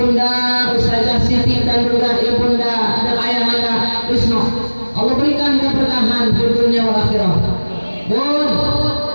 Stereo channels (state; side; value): inverted; both; correlation -1.00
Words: Ustazah Siti dan juga Ibunda dan Ayahanda Wisnu Allah berikan keberkahan di dunia wal akhirah. Bun,